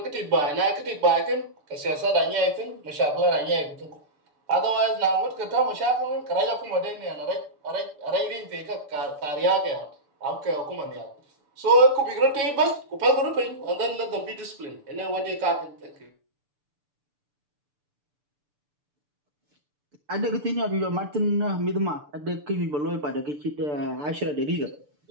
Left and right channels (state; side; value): late; left; 6.8 ms